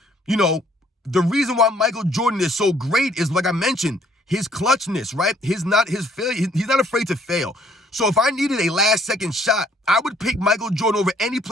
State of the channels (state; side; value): normal; both; correlation 0.63